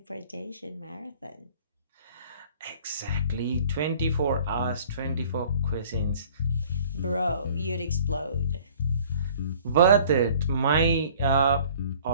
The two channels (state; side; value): inverted; both; correlation -0.51